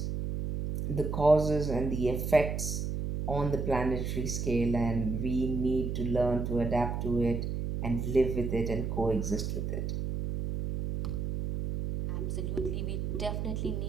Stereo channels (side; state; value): right; noise; hum, 2 dB below the sound